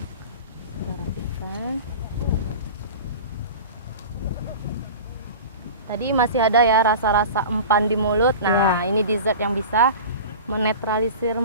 kita rapikan. Tadi masih ada ya rasa-rasa empan di mulut. Nah, ini dessert yang bisa menetralisir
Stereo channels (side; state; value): both; inverted; correlation -0.34